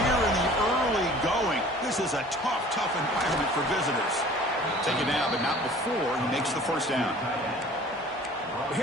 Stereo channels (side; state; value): both; normal; correlation 0.48